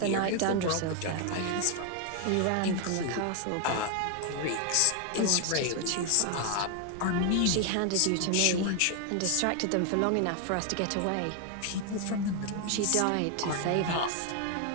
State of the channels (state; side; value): different; both; correlation 0.00